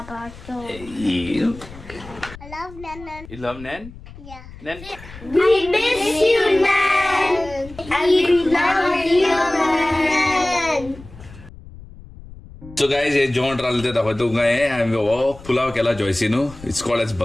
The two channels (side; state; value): left; noise; rumble, 18 dB below the sound